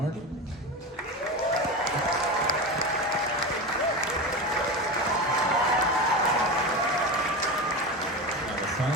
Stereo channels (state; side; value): normal; both; correlation 0.22